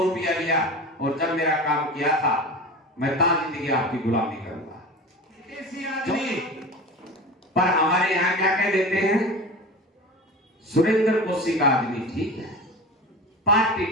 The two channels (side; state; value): both; normal; correlation 0.32